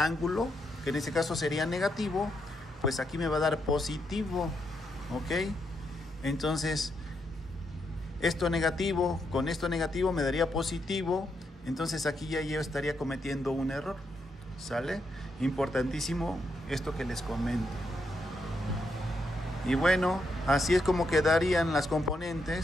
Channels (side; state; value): both; normal; correlation 0.80